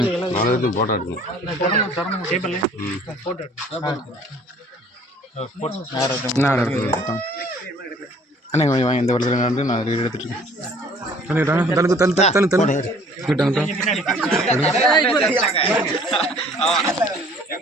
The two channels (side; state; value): both; normal; correlation 0.54